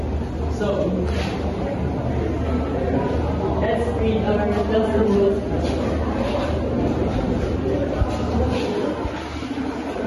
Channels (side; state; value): both; identical; correlation 1.00